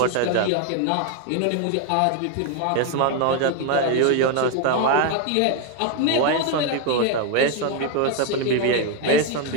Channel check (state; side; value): different; both; correlation 0.01